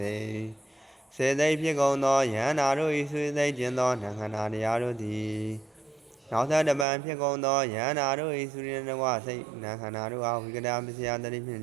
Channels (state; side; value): drops out; left; at 6.9 s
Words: ိတ်စေသိဖြစ်ကုန်သောယန္နာတို့၏ဆွေသိကျင်သောနံခန္ဓာတရားတို့သည်နောက်သောတပံဖြစ်ကုန်သောယန္နာတို့၏ဆွေနှင့်တကွစိတ်နံခန္ဓာတို့အားဝိကဒပစ္စယတတိဖြင့်